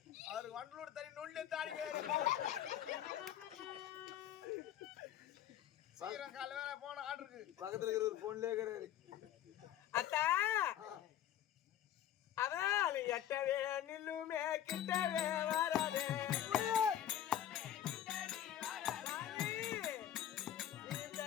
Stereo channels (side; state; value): right; quieter; 11.1 dB